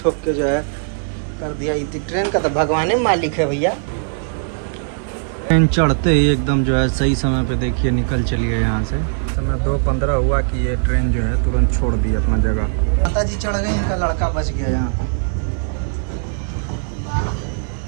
ठोक के जो है कर दिया। ट्रेन का तो भगवान मालिक है भैया। ट्रेन चढ़ते ही एकदम जो है सही समय पे देखिए निकल चलिए यहाँ से। समय 2:15 हुआ कि ये ट्रेन जो है तुरंत छोड़ दी अपना जगह। माता जी चढ़ गई, इनका लड़का बच गया यहाँ पे।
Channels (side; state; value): left; silent; 56 dB below the other